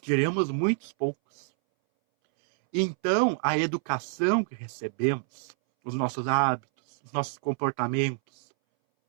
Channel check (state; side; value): silent; left; 60 dB below the other